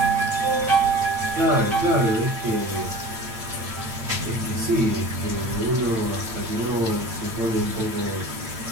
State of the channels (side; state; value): left; late; 9.0 ms